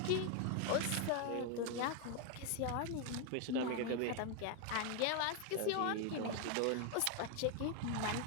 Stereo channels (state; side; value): different; both; correlation 0.01